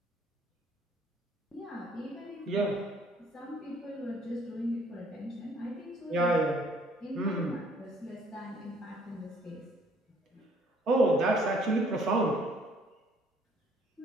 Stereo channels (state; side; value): normal; both; correlation 0.61